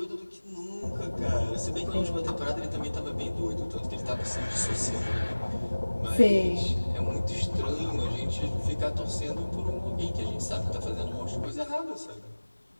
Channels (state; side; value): inverted; both; correlation -1.00